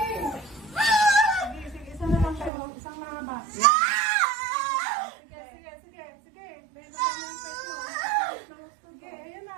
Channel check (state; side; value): drops out; left; at 2.5 s